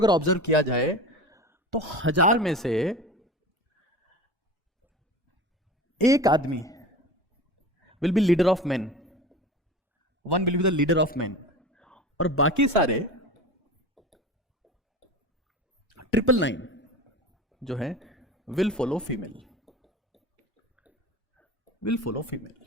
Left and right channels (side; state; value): both; normal; correlation 0.33